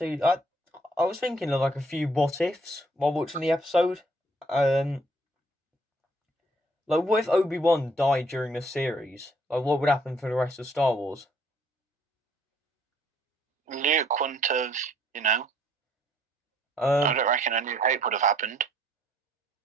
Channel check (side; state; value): both; normal; correlation 0.64